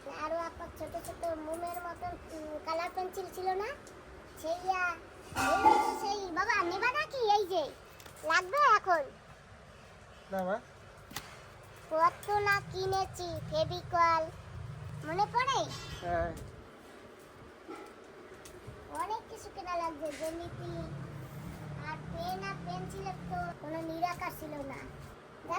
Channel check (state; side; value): identical; both; correlation 1.00